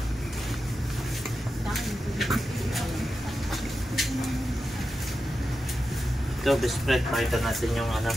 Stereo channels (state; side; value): normal; both; correlation 0.90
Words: Ito, best friend, pakita natin yung ano.